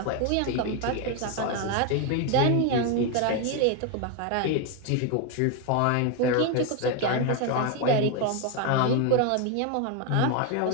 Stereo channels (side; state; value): both; different; correlation 0.01